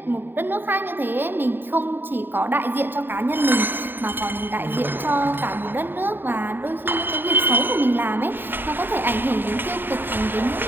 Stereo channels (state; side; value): late; left; 0.094 ms